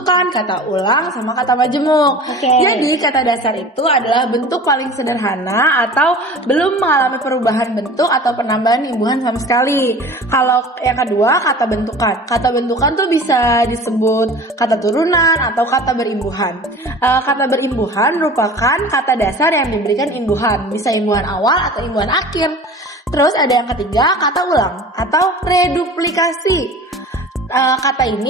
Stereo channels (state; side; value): normal; both; correlation 0.40